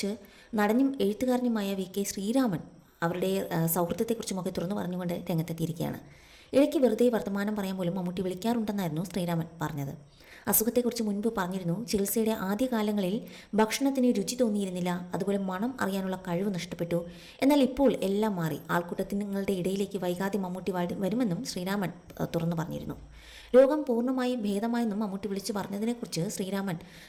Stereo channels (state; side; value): identical; both; correlation 1.00